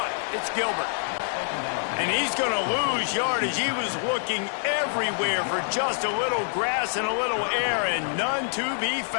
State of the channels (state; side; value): silent; right; digital silence